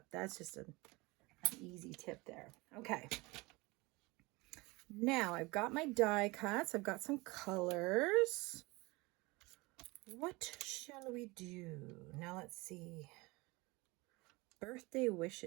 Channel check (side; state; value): left; quieter; 23.8 dB